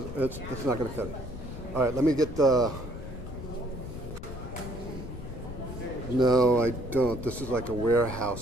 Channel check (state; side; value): noise; left; rumble, 10 dB below the sound